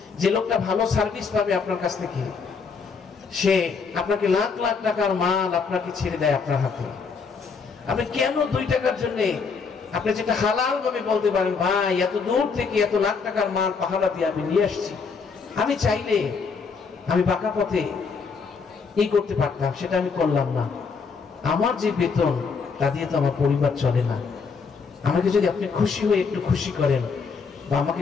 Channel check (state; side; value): quieter; right; 5.3 dB